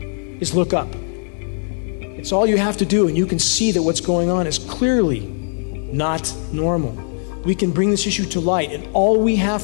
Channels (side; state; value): right; silent; digital silence